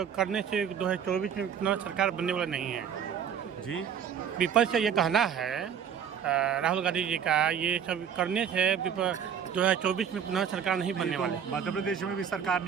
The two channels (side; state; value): left; quieter; 8.0 dB